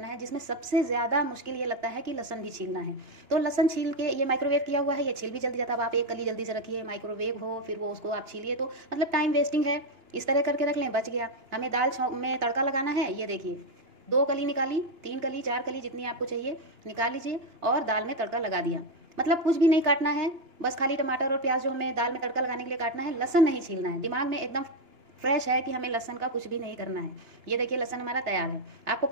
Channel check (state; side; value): late; left; 2.9 ms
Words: है, जिसमें सबसे ज़्यादा मुश्किल ये लगता है कि लहसुन भी छीलना है। तो लहसुन छील के, ये माइक्रोवेव किया हुआ है, ये छील भी जल्दी जाता है। अब आप एक कली जल्दी से रखिए, माइक्रोवेव हो फिर वो उसको आप छीलिए, तो मतलब टाइम वेस्टिंग है। इस तरह करके रख लें, बच गया। हमें दाल में तड़का लगाना है, ये देखिए 2 कली निकाली, 3 कली 4 कली जितनी आपको चाहिए निकाल लीजिए और दाल में तड़का लगा दिया। मतलब कुछ भी नहीं काटना है, बस खाली टमाटर और प्याज जो हमें दाल में तड़का लगाने के लिए काटना है, लहसुन नहीं छीलना है। दिमाग में एकदम फ्रेश है कि हमें लहसुन का कुछ भी नहीं करना है। ये देखिए लहसुन हमारा तैयार है। आपको